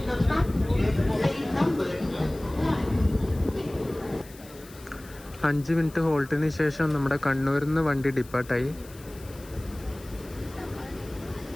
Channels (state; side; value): noise; left; hiss, 21 dB below the sound